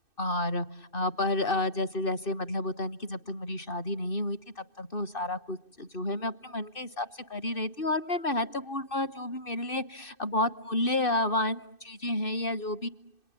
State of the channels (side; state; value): right; late; 2.6 ms